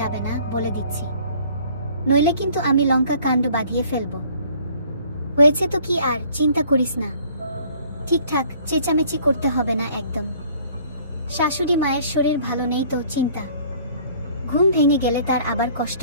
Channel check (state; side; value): inverted; both; correlation -0.55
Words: না বলে দিচ্ছি, নইলে কিন্তু আমি লঙ্কা কাণ্ড বাঁধিয়ে ফেলবো। হয়েছে তো কি, আর চিন্তা করিস না, ঠিকঠাক চেঁচামেচি করতে হবে না একদম। শাশুড়ি মায়ের শরীর ভালো নেই তো চিন্তা, ঘুম ভেঙে গেলে তার আবার কষ্ট